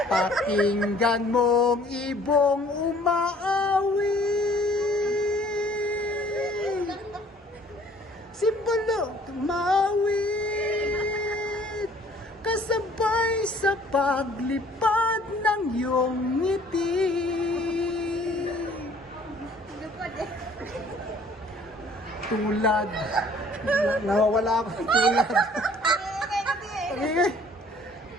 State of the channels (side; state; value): both; normal; correlation 0.55